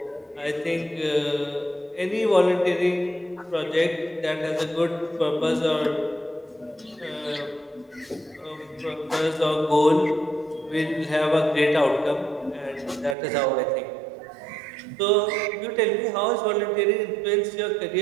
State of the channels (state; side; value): drops out; left; at 13.2 s